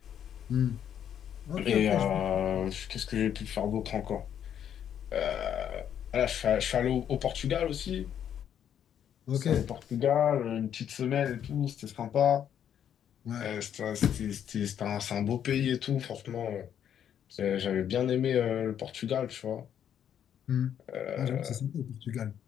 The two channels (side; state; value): right; quieter; 9.4 dB